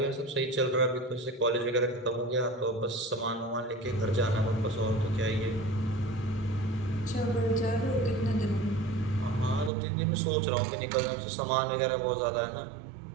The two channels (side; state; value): left; drops out; at 9.7 s